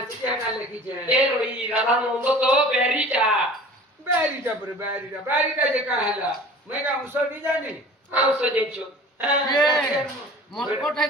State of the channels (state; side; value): normal; both; correlation 0.43